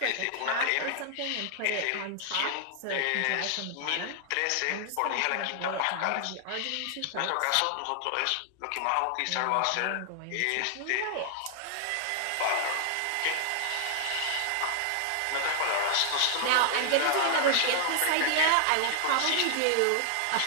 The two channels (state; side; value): different; both; correlation 0.00